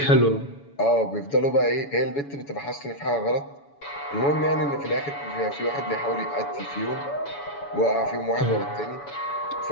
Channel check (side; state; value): right; late; 7.0 ms